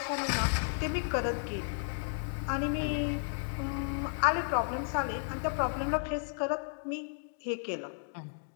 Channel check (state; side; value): silent; right; digital silence